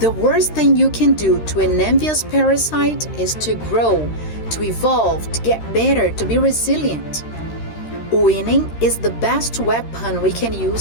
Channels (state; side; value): late; right; 13 ms